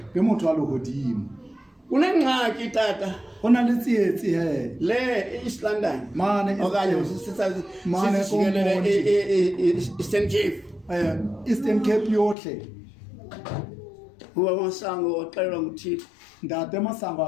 ke motho wa lehodimo. Kunengxaki tata Go na le tsietsi he le East London. mane Okanye Mane sijikelele Eastern Cape. Eastern Cape yohle. Uba Masango waxelwa nguThixo Ntate Masango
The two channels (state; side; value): drops out; right; at 12.4 s